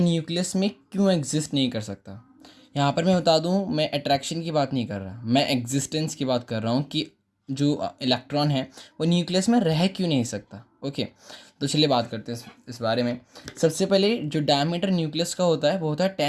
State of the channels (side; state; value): both; identical; correlation 1.00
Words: में क्यों एग्जिस्ट नहीं कर सकता। यहाँ पर मैं बता दूँ, मैं अट्रैक्शन की बात नहीं कर रहा, मैं एग्जिस्टेंस की बात कर रहा हूँ कि जो इलेक्ट्रॉन है वो न्यूक्लियस में रह क्यों नहीं सकता। ओके, तो चलिए बात करते हैं इस बारे में। सबसे पहले जो डायमीटर न्यूक्लियस का होता है वो होता है